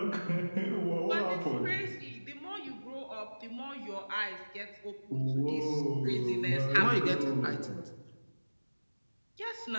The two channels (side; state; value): both; inverted; correlation -1.00